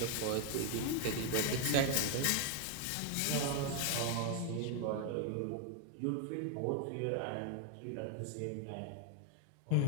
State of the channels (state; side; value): different; both; correlation 0.00